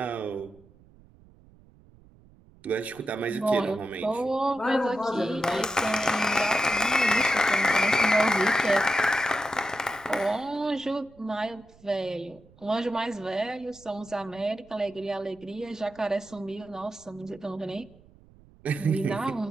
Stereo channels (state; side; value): noise; right; rumble, 26 dB below the sound